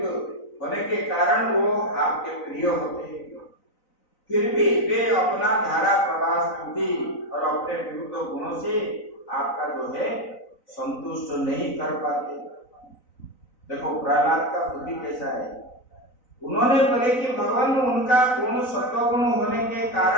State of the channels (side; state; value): right; late; 3.9 ms